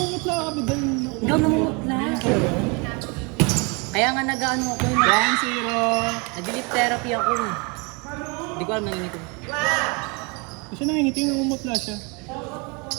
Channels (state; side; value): quieter; left; 30.8 dB